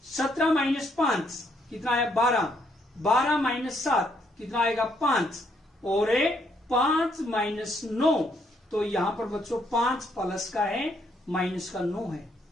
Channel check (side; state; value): both; normal; correlation 0.72